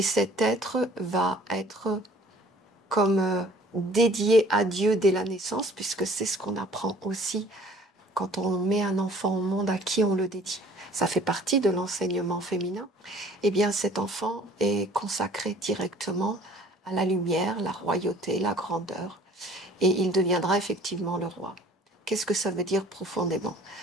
cet être va être comme dédié à Dieu dès la naissance, puisque c'est ce qu'on apprend aussi quand on met un enfant au monde, à qui on le dédie. Ça fait partie de l'enseignement féminin. Eh bien, cet enfant est consacré directement à la lumière, la royauté, la grandeur, et il deviendra effectivement le roi. Qu'est-ce que ça veut dire profondément?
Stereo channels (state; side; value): normal; both; correlation 0.52